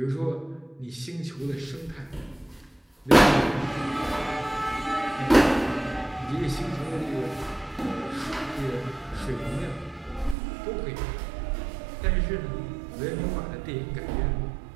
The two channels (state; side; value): drops out; left; at 10.4 s